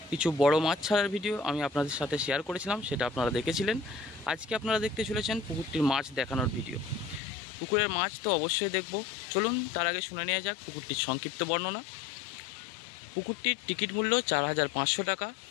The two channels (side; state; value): right; drops out; at 7.2 s